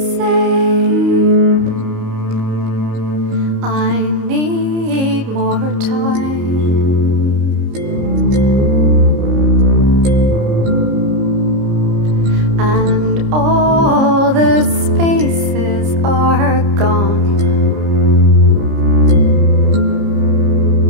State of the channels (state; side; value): late; left; 30 ms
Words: say, I need more time. And all the spaces are gone.